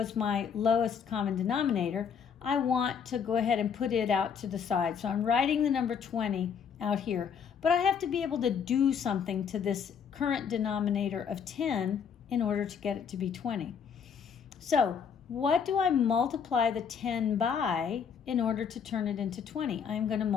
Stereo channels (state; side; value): quieter; right; 7.1 dB